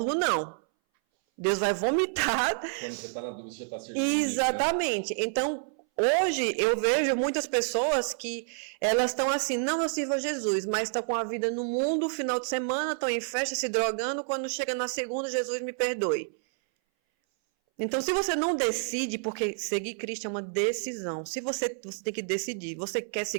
não. Deus vai vomitar. Quando você tá na dúvida, você já tá servindo. Exatamente. Inimigo, né? Então, hoje eu vejo muitas pessoas que elas estão assim, não, eu sirvo a Jesus, mas estão com a vida no mundo, final de semana, estão em festa, se drogando, quando chega na segunda, Jesus me perdoe. Então, se você não decide, porque seguir Cristo é uma decisão, se você tem que decidir, você quer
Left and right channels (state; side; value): silent; left; 59 dB below the other